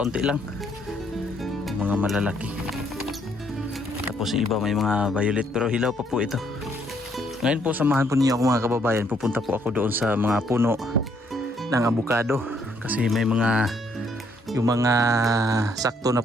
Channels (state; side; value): normal; both; correlation 0.69